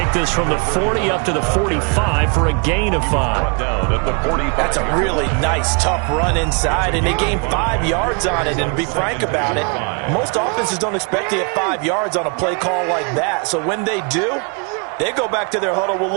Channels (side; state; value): left; quieter; 35.5 dB